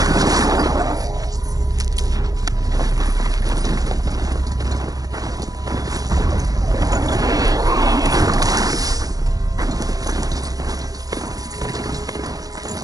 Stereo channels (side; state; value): left; late; 0.18 ms